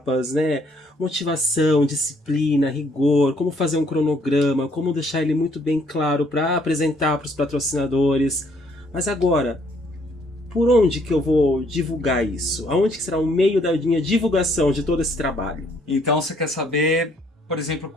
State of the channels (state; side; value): normal; both; correlation 0.66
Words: né? Motivação, disciplina, rigor, como fazer um cronograma, como deixar ele muito bem claro para apresentar para os patrocinadores. Mas agora, por onde que eu vou divulgar isso? Aonde que será o meio da minha divulgação de todo esse trabalho? Então você quer saber, por exemplo,